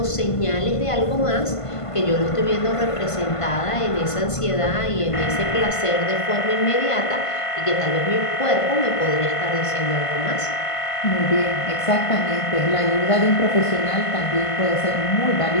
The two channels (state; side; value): late; right; 1.5 ms